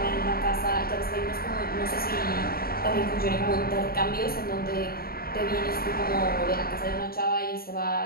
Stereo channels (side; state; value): right; late; 0.44 ms